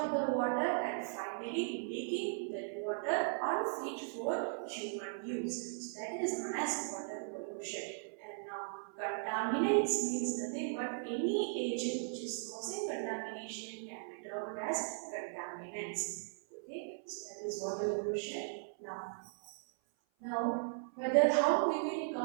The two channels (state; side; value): silent; left; 53 dB below the other